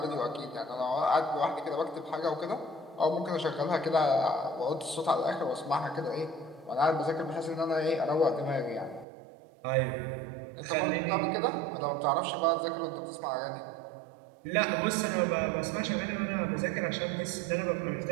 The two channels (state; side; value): drops out; left; at 9.1 s